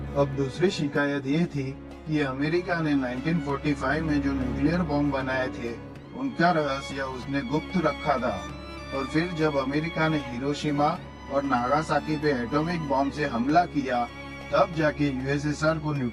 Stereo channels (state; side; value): identical; both; correlation 1.00